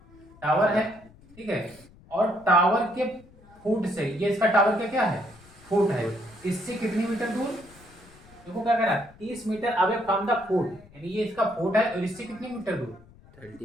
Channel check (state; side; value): noise; left; rumble, 24 dB below the sound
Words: टावर है, ठीक है। और टावर के फुट से, ये इसका टावर का क्या है? फुट है। इससे कितनी मीटर दूर? देखो क्या कह रहा है? 30 metre away from the foot, यानी ये इसका फुट है और इससे कितनी मीटर दूर?